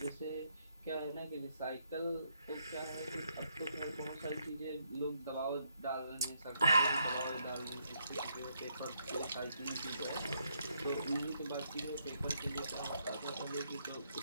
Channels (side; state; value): both; inverted; correlation -0.75